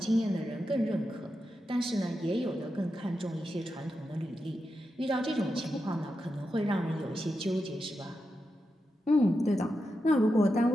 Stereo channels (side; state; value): both; normal; correlation 0.88